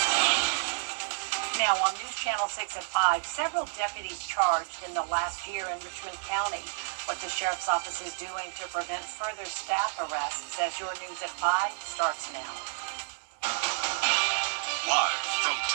Now on News Channel 6 at 5, several deputies charged in the last year in Richmond County. What the Sheriff's Office is doing to prevent further staff arrests as your News at 5 starts now. Live from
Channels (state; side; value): silent; left; digital silence